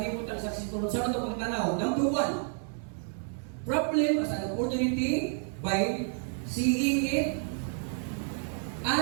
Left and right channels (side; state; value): left; silent; 58 dB below the other